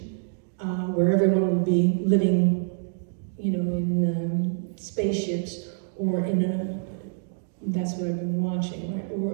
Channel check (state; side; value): silent; left; digital silence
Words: where everyone would be living, you know, in spaceships or in a, that's what I've been watching, right?